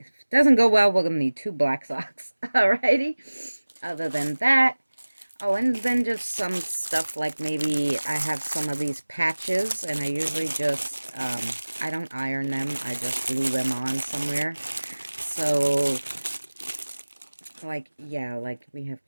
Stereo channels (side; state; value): both; inverted; correlation -1.00